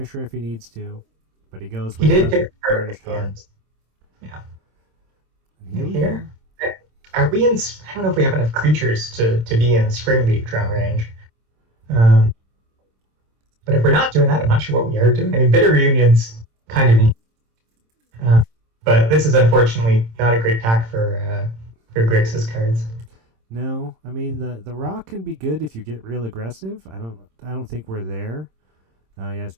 if he needs to, but he goes with the Burnished Heart. Yeah. And here. Are we in? I don't know if we have enough creatures to be in Spring League drum range. But if we're not doing that, I'm not sure what we are doing. I mean, Bitter Reunion's kind of neat. But this is unfortunately not a great pack for Grixis cards. No, I mean the rock can be good if you get real aggressive. I don't think we're there. Yeah, it's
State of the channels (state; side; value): late; left; 26 ms